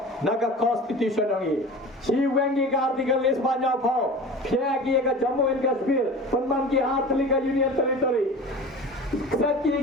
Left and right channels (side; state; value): both; normal; correlation 0.36